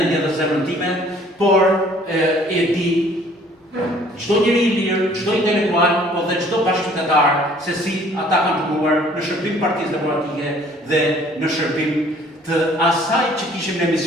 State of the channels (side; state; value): both; normal; correlation 0.56